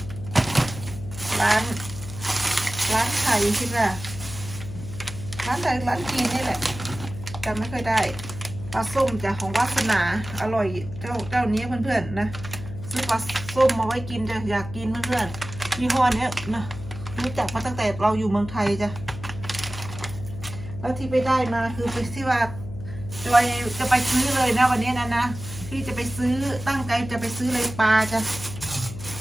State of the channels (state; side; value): noise; left; hum, 11 dB below the sound